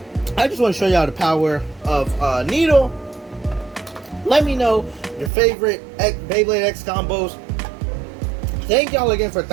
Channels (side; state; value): left; drops out; at 5.3 s